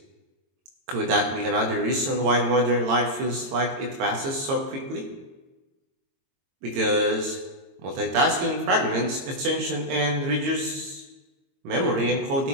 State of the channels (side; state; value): left; late; 22 ms